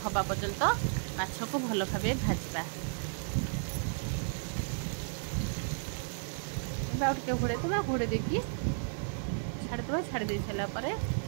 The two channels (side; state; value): left; silent; digital silence